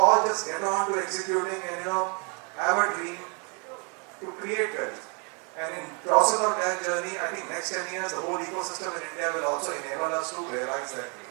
just get on to executing and have a dream to create wealth. And in process of that journey, I think next 10 years, the whole ecosystem in India will also enable us to realize that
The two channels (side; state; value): left; quieter; 35.2 dB